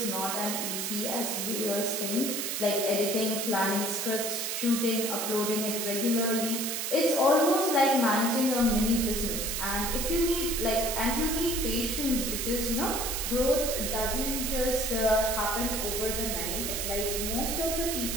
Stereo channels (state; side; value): noise; right; hiss, 2 dB below the sound